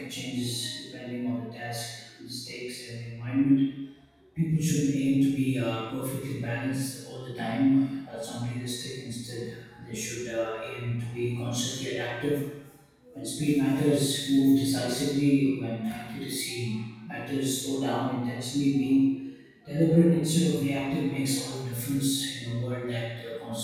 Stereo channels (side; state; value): both; identical; correlation 1.00